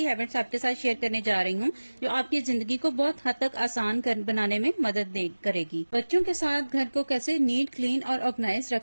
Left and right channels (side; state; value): both; inverted; correlation -1.00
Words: हैबिट्स आपके साथ शेयर करने जा रही हूँ जो आपकी जिंदगी को बहुत हद तक आसान बनाने में मदद करेगी। बच्चों के साथ घर को कैसे नीट, क्लीन और ऑर्गेनाइज रख